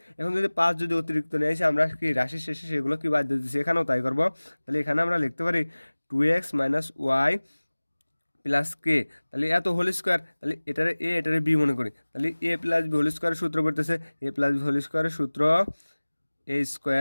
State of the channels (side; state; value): both; inverted; correlation -1.00